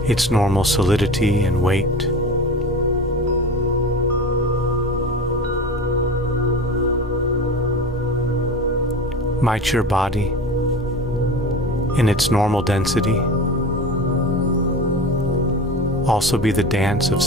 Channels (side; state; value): both; normal; correlation 0.31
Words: its normal solidity and weight. Might your body, in its normal density, also be the dance of